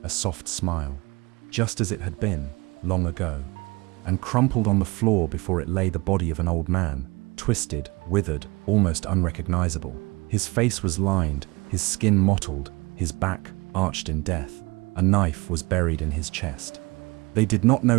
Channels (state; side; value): quieter; left; 24.4 dB